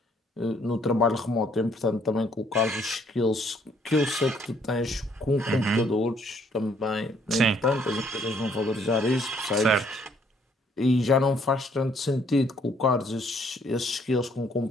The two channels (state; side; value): normal; both; correlation 0.66